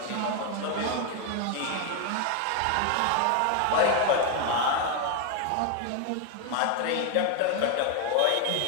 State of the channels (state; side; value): different; both; correlation 0.01